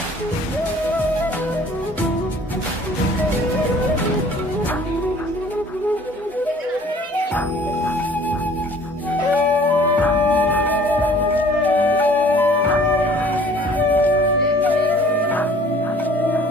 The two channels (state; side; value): normal; both; correlation 0.52